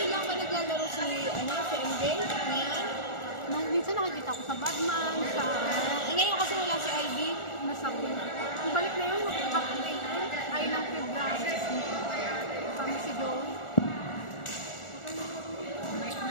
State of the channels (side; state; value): right; late; 1.4 ms